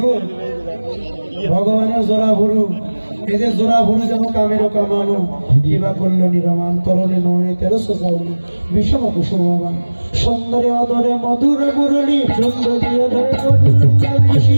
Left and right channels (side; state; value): both; inverted; correlation -1.00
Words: ভগবানের জোড়া ভুরু। এই যে জোড়া ভুরু যেন কামের কামানো, কিবা করলো নিরমান, তরলে নয়নে তেরো সোজাউনি, বিষম কুসুমবান, সুন্দরে অদরে মধুর মুরলী, সুন্দরী অদরে মধুর